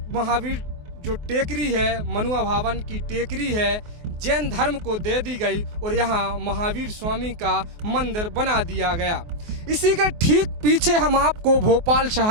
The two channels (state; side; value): late; left; 24 ms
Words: महावीर जो टेकरी है, मनुआ भवन की टेकरी है, जैन धर्म को दे दी गई और यहाँ महावीर स्वामी का मंदिर बना दिया गया। इसी के ठीक पीछे हम आपको भोपाल